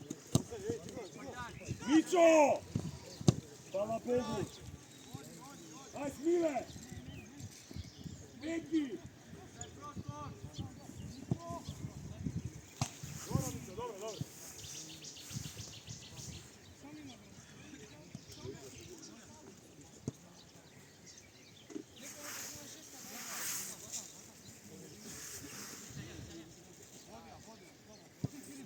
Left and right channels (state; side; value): identical; both; correlation 1.00